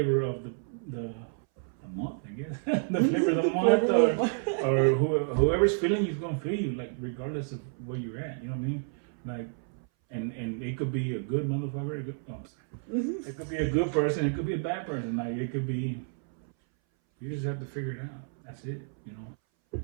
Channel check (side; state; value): left; silent; 58 dB below the other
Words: of the month, I guess. The flavor of the month, or whoever's feeling you's gonna feel you, like regardless of where you're at. You know what I mean? Like, and it could be a good motherfucker. It could be a good person. It could be a bad person. Like it could be. You just have to figure it out. That's it. You know.